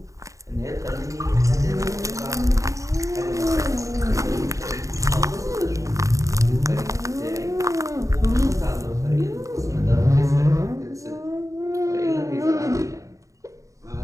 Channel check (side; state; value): left; late; 0.16 ms